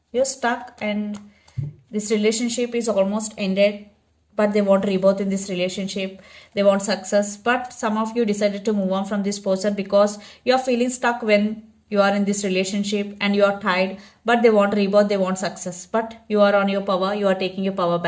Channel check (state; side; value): identical; both; correlation 1.00